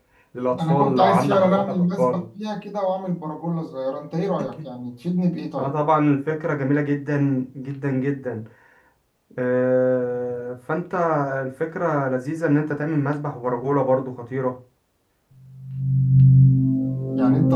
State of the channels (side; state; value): both; identical; correlation 1.00